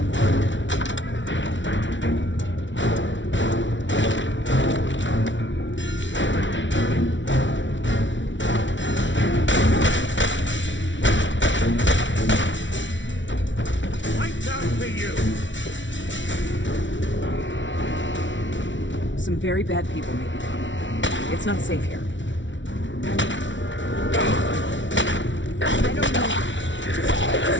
Some very bad people may be coming. It's not safe here. I don't know.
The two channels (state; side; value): late; right; 0.55 ms